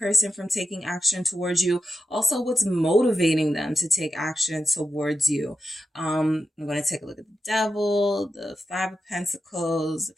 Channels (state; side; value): normal; both; correlation 0.89